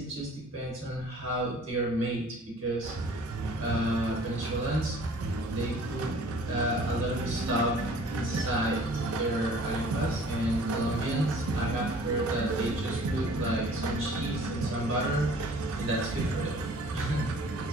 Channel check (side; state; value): both; normal; correlation 0.50